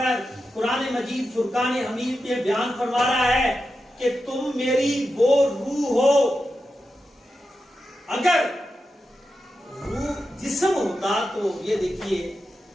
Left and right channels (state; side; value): normal; both; correlation 0.89